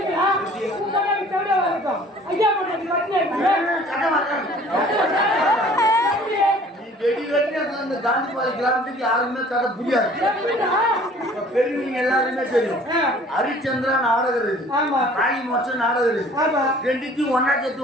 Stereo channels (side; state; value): both; normal; correlation 0.51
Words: அந்த காந்திபாடி கிராமத்துக்கு யாருமே கதை புரியாது. பெரியவங்க எல்லாருமே தெரியும். ஹரிச்சந்திரா நாடகம் இருக்கு, காளி மோட்சம் நாடகம் இருக்கு. ரெண்டுக்கும் ஒன்னா